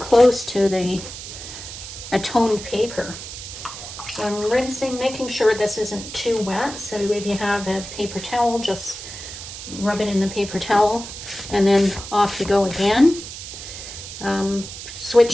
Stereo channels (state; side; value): noise; right; hiss, 11 dB below the sound